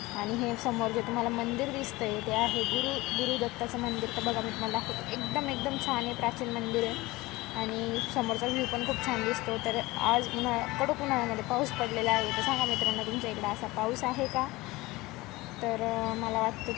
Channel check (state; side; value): quieter; right; 20.7 dB